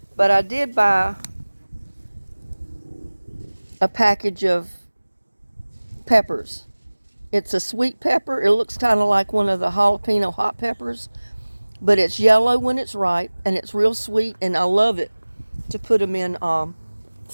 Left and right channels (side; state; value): both; inverted; correlation -1.00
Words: but I did buy a package of peppers. It's a sweet pepper. It looks kind of like one of the jalapeno hot peppers, but it's yellow when it's ripe, and it's real sweet, and I love it to put them in